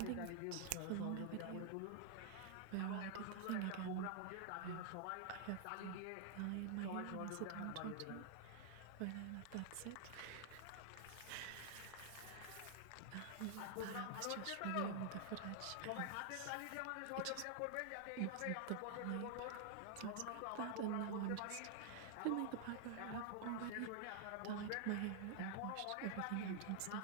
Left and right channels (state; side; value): different; both; correlation 0.00